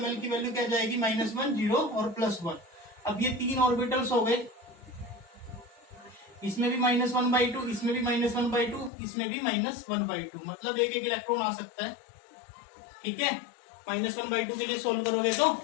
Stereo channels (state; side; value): drops out; right; at 8.9 s